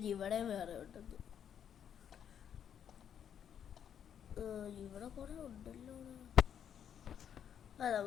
ഇവിടെ വേറെ ഉണ്ടെന്ന്. ഇവിടെ കുറെ ഉണ്ടല്ലോ.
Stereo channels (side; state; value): right; quieter; 8.8 dB